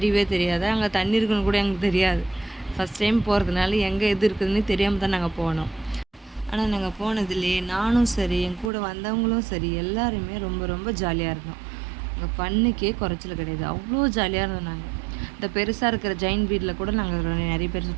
தெரியாது. அங்கே தண்ணி இருக்குன்னு கூட எங்களுக்கு தெரியாது. ஃபஸ்ட் டைம் போகிறதுனால எங்கே எது இருக்குதுன்னு தெரியாமல் தான் நாங்கள் போனோம். ஆனால் நாங்கள் போனதுலேயே நானும் சரி, என் கூட வந்தவங்களும் சரி, எல்லாருமே ரொம்ப ரொம்ப ஜாலியாக இருந்தோம். அங்கே ஃபன்னுக்கே குறைச்சல் கிடையாது. அவ்வளோ ஜாலியாக இருந்தோம். நாங்கள் இந்த பெருசாக இருக்கிற ஜெயின் வீட்டில் கூட நாங்கள் நிறைய பேர்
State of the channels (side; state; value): left; drops out; at 8.7 s